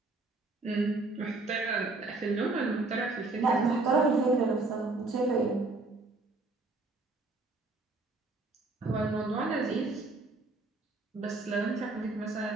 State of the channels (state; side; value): quieter; left; 3.3 dB